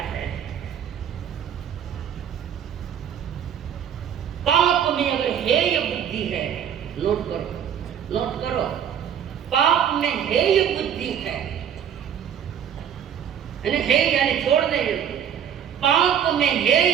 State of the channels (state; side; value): quieter; left; 8.8 dB